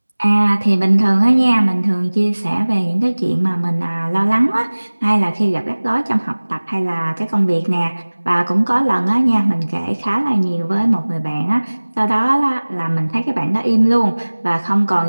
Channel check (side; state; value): both; inverted; correlation -1.00